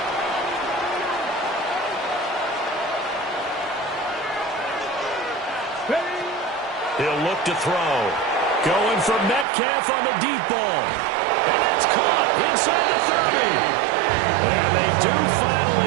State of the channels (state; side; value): drops out; left; at 9.5 s